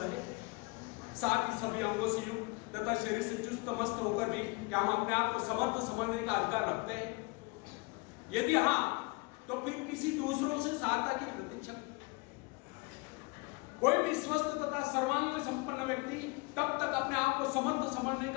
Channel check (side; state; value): right; quieter; 27.5 dB